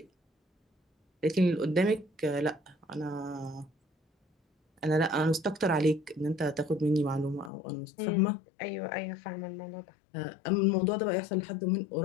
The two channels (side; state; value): right; drops out; at 7.5 s